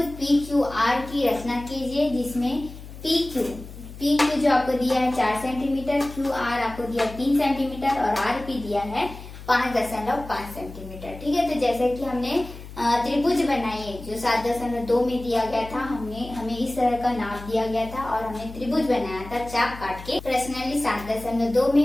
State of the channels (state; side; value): noise; left; hum, 14 dB below the sound